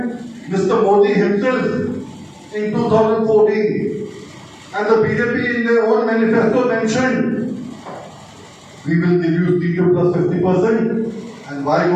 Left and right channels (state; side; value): identical; both; correlation 1.00